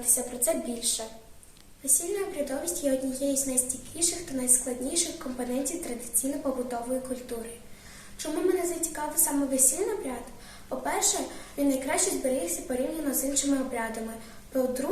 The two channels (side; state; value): both; identical; correlation 1.00